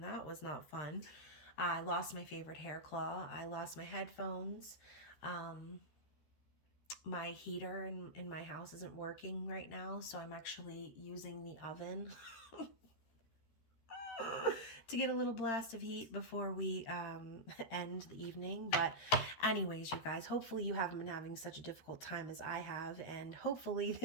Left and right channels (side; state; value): right; late; 13 ms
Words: that was not fun. I lost my favorite hair claw. I lost my headphones. My heater in my house isn't working right now, so I'm actually using the oven to get a little blast of heat before we end the evening. But anyways, you guys, hopefully you haven't been having such a difficult time as I have, and hopefully